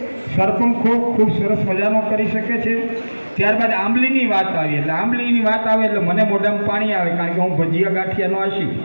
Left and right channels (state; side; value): inverted; both; correlation -1.00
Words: સરપંખો ખૂબ સરસ મજાનો કરી શકે છે. ત્યારબાદ આંબલીની વાત આવી. એટલે આંબલીની વાત આવે એટલે મને મોઢામાં પાણી આવે, કારણ કે હું ભજીયા ગાંઠિયાનો આશી.